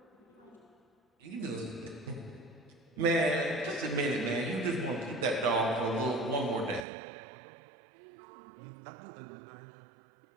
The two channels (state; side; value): drops out; left; at 6.9 s